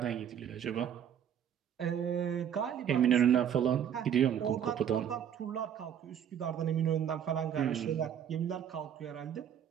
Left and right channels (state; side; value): quieter; left; 9.1 dB